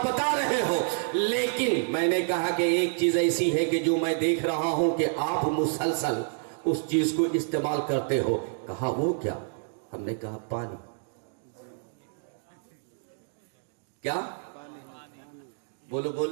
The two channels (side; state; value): left; silent; digital silence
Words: بتا رہے ہو، لیکن میں نے کہا کہ ایک چیز ایسی ہے کہ جو میں دیکھ رہا ہوں کہ آپ مسلسل اس چیز کو استعمال کرتے ہو۔ کہا وہ کیا؟ ہم نے کہا پانی۔ کیا؟ بولو